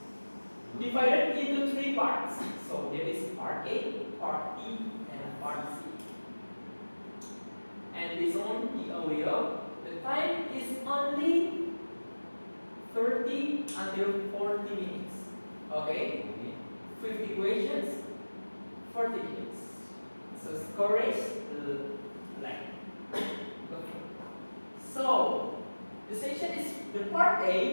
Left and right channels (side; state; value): both; inverted; correlation -1.00